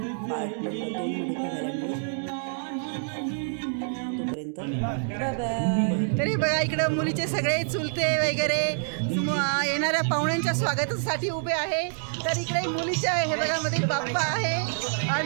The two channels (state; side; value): silent; left; digital silence